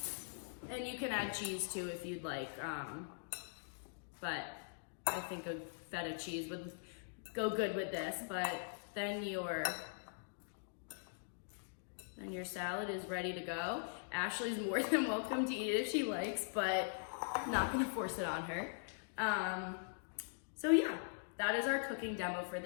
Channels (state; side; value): silent; right; digital silence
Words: And you can add cheese too if you'd like, but I think a feta cheese would go good with this. But then your salad is ready to go. Ashley's more than welcome to eat it if she likes, but not gonna force it on her. So yeah, that is our cooking demo for